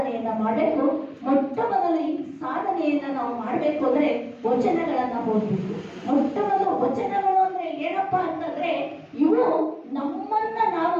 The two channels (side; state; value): both; identical; correlation 1.00